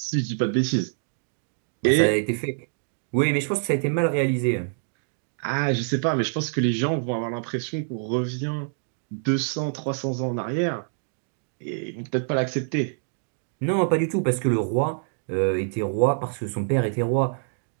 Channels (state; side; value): silent; left; digital silence